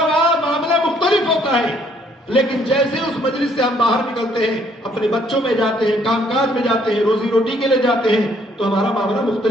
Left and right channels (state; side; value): normal; both; correlation 0.65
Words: وہاں معاملہ مختلف ہوتا ہے, لیکن جیسے اس مجلس سے ہم باہر نکلتے ہیں, اپنے بچوں میں جاتے ہیں, کام کاج میں جاتے ہیں, روزی روٹی کے لیے جاتے ہیں, تو ہمارا معاملہ